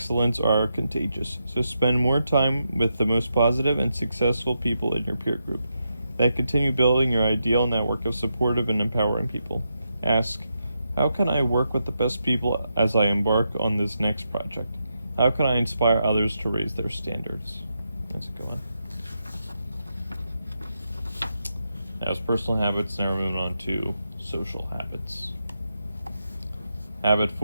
are contagious, so spend more time with the most positive and successful people in your peer group. Then continue building your ideal network of supportive and empowering people. Ask, how can I work with the best people as I embark on this next project? How can I inspire others to raise their standards? That's a good one. That was personal habits. Now we're moving on to social habits. Habit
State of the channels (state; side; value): inverted; both; correlation -0.85